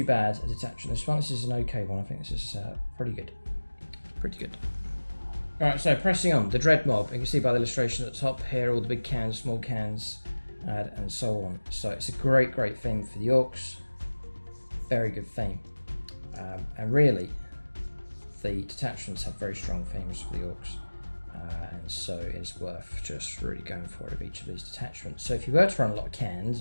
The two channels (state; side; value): inverted; both; correlation -1.00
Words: bad a detachment. This is an okay one. I think this is pretty good. Pretty good. Alright, so pressing on, the Dread Mob. You can see by the illustration at the top here, all the big cans, small cans, and so on. So it's a great, great theme for the Orks. Very good theme. And really, the detachments have very strong themes for the Orks. And so it's worth just really going for it of each of these detachments. So if you were to run a lot of cans